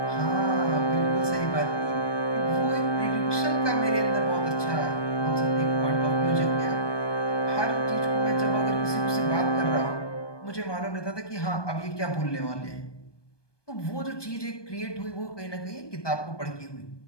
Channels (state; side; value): late; right; 1.2 ms